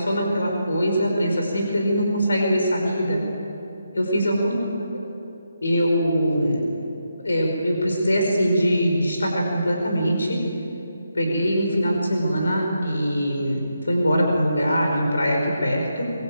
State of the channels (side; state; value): both; inverted; correlation -0.83